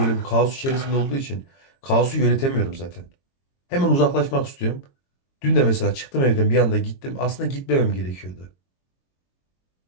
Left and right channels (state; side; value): late; right; 22 ms